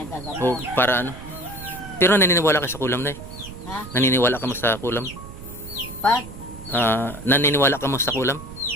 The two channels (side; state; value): right; noise; rumble, 14 dB below the sound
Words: O para ano? Pero naniniwala ka sa kulam, Nay? Ha? Naniniwala ka mo sa kulam? Pag? Naniniwala ka mo sa kulam?